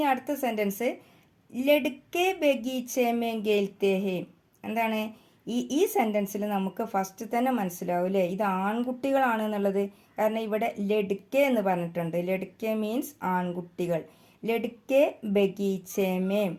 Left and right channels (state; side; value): identical; both; correlation 1.00